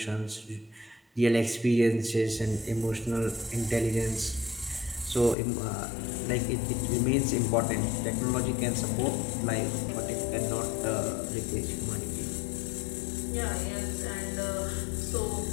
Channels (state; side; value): drops out; right; at 5.4 s